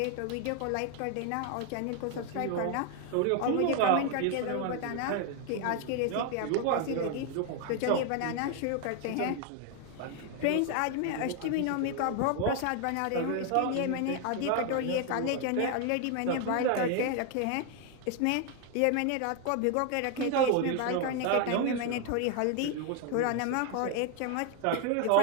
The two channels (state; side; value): different; both; correlation 0.01